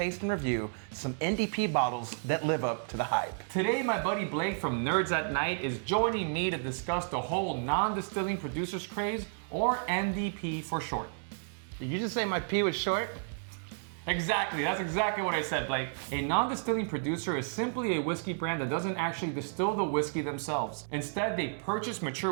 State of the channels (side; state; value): left; silent; digital silence